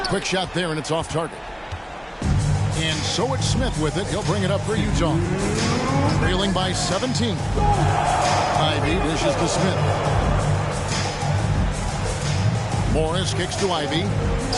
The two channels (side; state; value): both; identical; correlation 1.00